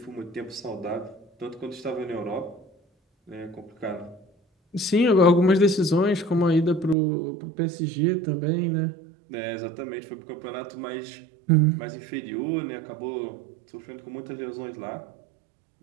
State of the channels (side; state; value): left; drops out; at 7.0 s